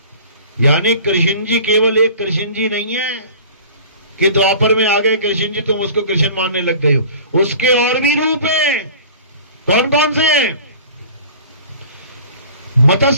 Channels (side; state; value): both; inverted; correlation -0.43